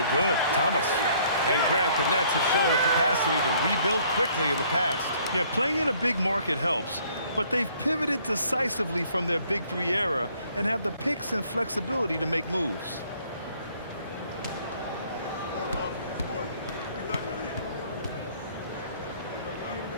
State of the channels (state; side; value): inverted; both; correlation -0.61